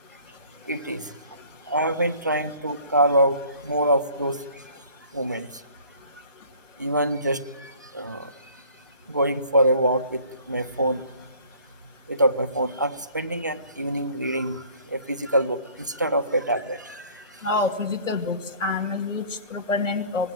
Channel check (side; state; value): both; inverted; correlation -0.51